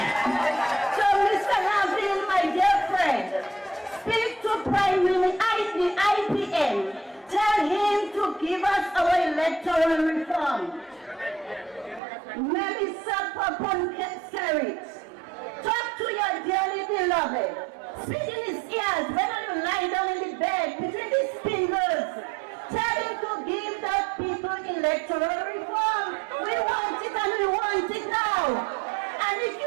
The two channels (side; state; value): left; drops out; at 12.0 s